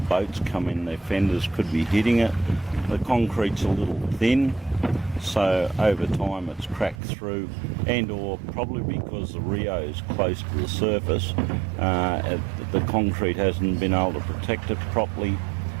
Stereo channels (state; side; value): drops out; left; at 7.0 s